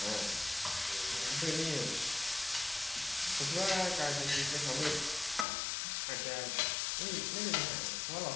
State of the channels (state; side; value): drops out; right; at 5.5 s